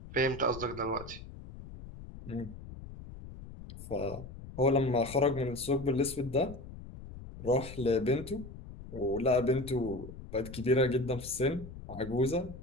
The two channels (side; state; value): left; noise; rumble, 13 dB below the sound